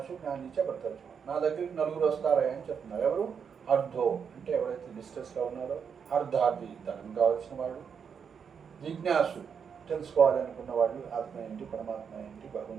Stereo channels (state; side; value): quieter; left; 6.8 dB